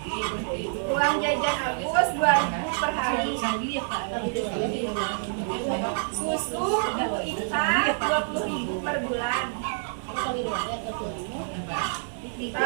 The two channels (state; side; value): silent; left; digital silence